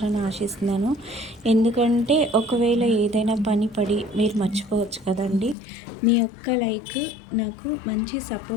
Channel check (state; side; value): drops out; right; at 5.6 s